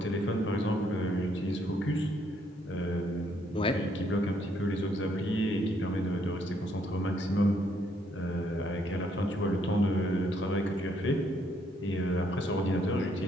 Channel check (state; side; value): normal; both; correlation 0.70